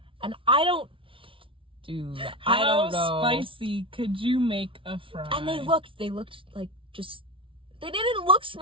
And I don't know. How spicy could you make a fry? And they looked like they didn't look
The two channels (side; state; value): left; late; 0.25 ms